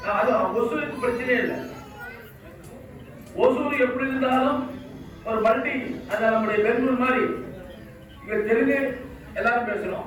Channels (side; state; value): both; identical; correlation 1.00